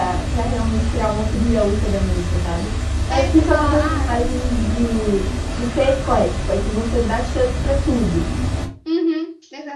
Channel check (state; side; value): identical; both; correlation 1.00